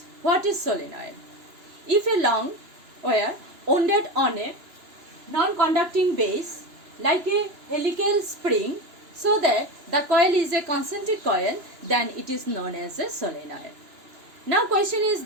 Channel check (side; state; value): left; late; 2.9 ms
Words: what is solenoid? If a long wire wounded on a non-conducting base like a helical spring, so that the coil is a concentric coil, then it is known as a solenoid. Now question is